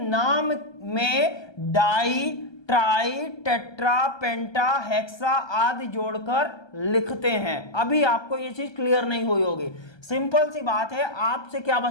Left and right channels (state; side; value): late; right; 1.3 ms